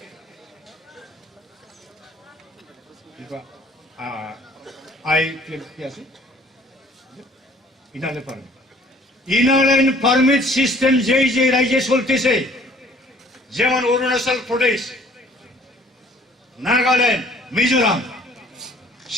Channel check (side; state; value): both; normal; correlation 0.55